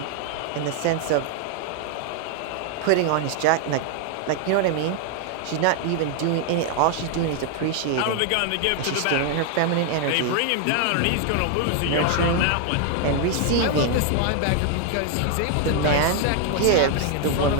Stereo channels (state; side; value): different; both; correlation 0.00